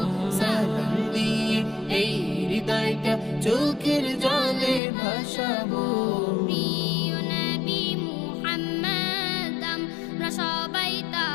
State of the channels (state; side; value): drops out; right; at 4.8 s